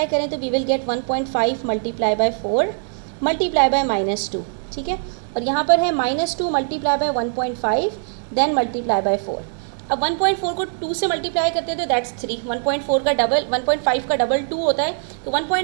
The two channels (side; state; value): left; silent; 65 dB below the other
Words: करें तो we will get 1.5 multiply by 4 multiply by -2, ठीक है। और यहाँ पर है -2 multiply by 1.5 then multiply by 4। अब 1.4 को 2 से मल्टीप्लाई करते हैं तो दैट्स 3, 1.4 का डबल 1.5 का डबल 2 होता है, तो